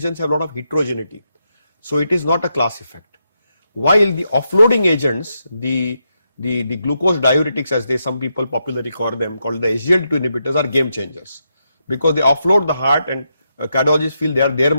have a lot of heterogeneity, so it is not a class effect. While the offloading agents, the glucose diuretics, as some people popularly call them, called the SGLT2 inhibitors, are game changers, because they offload the heart, and cardiologists feel they are their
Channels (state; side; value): inverted; both; correlation -0.83